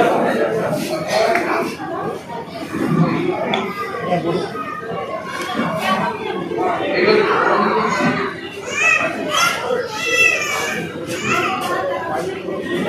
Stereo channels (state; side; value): identical; both; correlation 1.00